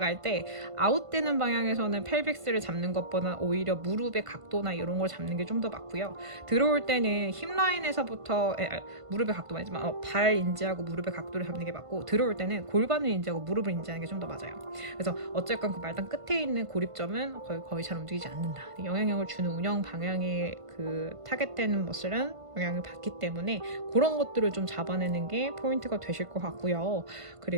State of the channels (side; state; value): left; late; 1.5 ms